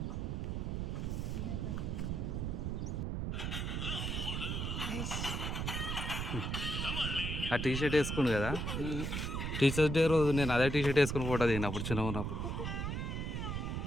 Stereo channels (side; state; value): right; noise; rumble, 2 dB below the sound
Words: ఆ టీ షర్ట్ వేసుకుండు కదా టీచర్స్ డే రోజు నేను అదే టీ షర్ట్ వేసుకుని ఫోటో దిగినప్పుడు చిన్నగా ఉన్నప్పుడు